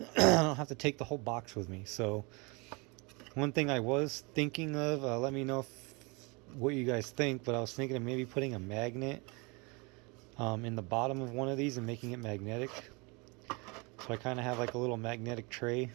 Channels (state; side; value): quieter; left; 29.3 dB